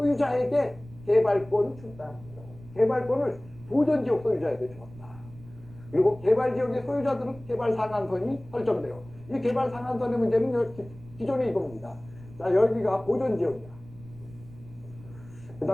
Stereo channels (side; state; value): right; noise; rumble, 20 dB below the sound